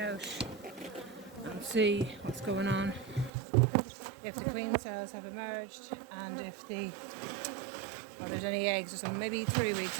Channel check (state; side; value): drops out; left; at 3.3 s